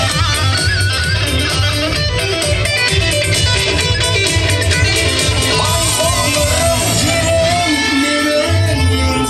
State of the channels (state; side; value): identical; both; correlation 1.00